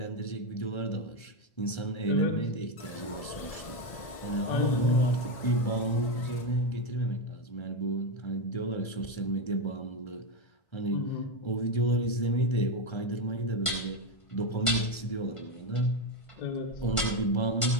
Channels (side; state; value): right; late; 1.5 ms